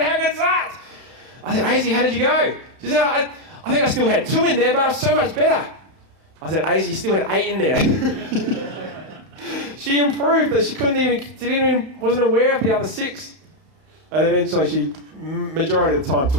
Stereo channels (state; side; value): late; left; 31 ms